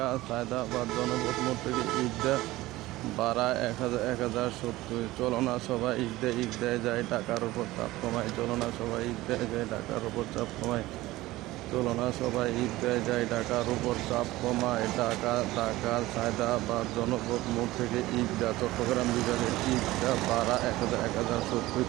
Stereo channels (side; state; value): left; quieter; 18.0 dB